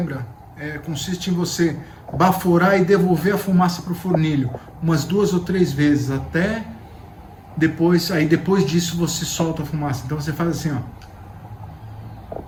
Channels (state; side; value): identical; both; correlation 1.00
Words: consiste em você baforar e devolver a fumaça para o fornilho umas 2 ou 3 vezes, até depois, aí depois disso você solta a fumaça. Então você faz assim, ó.